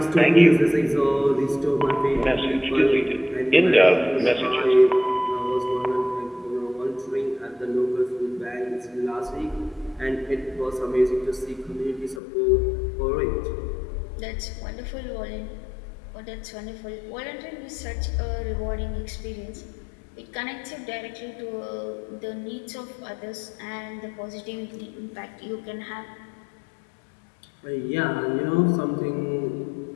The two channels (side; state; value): right; drops out; at 12.2 s